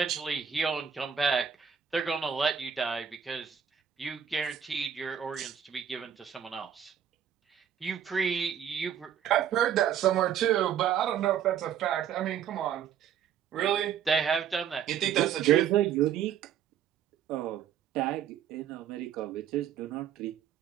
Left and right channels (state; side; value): quieter; left; 8.6 dB